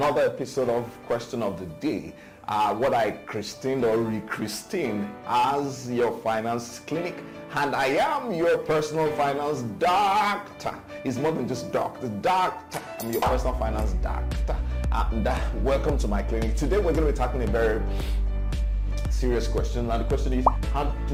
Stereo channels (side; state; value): both; identical; correlation 1.00